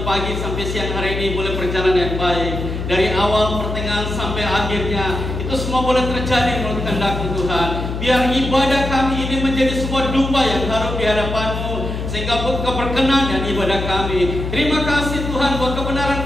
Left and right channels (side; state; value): left; noise; hum, 4 dB below the sound